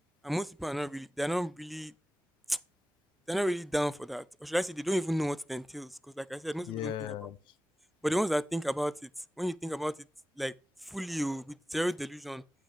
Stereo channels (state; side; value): normal; both; correlation 0.95